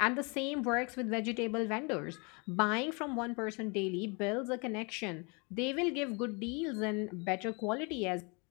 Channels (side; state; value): right; quieter; 32.0 dB